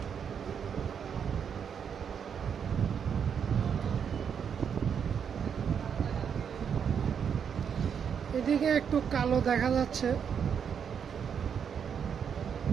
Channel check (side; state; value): left; quieter; 7.4 dB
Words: এদিকে একটু কালো দেখা যাচ্ছে।